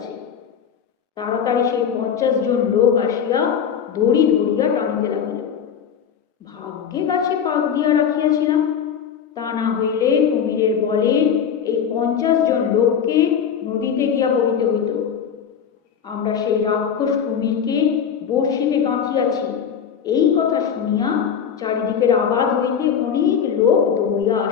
তাড়াতাড়ি সেই 50 জন লোক আসিয়া দড়ি ধরিয়া টানিতে লাগিল। ভাগ্যে গাছে পাক দিয়া রাখিয়াছিলাম, তা না হইলে কুমিরের বলে এই 50 জন লোককে নদীতে গিয়া পড়িতে হইত। আমরা সেই রাক্ষস কুমিরকে বর্ষিতে গাঁথিয়াছি এই কথা শুনিয়া চারিদিকের আবাদ হইতে অনেক লোক দৌড়িয়া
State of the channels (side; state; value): right; quieter; 7.7 dB